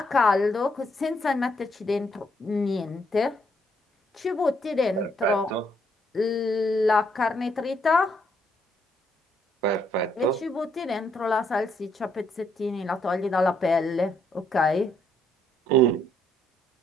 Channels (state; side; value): normal; both; correlation 0.72